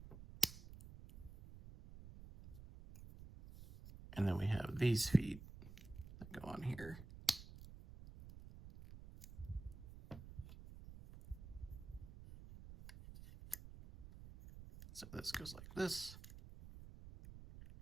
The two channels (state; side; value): noise; right; rumble, 14 dB below the sound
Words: And then we have these feet that go on here. So this goes like this.